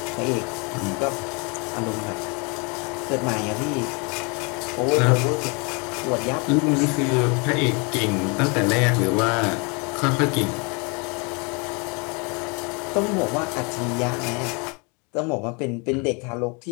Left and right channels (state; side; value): quieter; right; 32.0 dB